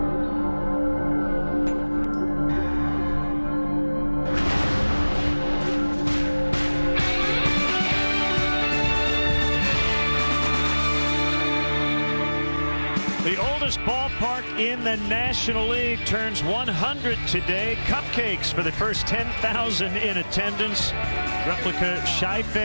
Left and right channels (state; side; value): inverted; both; correlation -1.00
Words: The oldest ballpark in the National League turns 100 today. Cupcakes for the first 10,000 in attendance. Replica